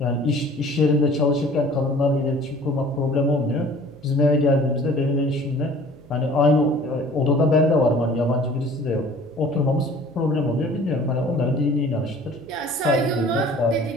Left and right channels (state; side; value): noise; right; hum, 24 dB below the sound